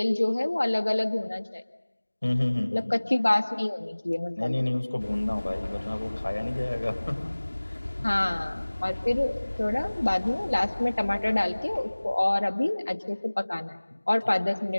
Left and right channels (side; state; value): both; inverted; correlation -1.00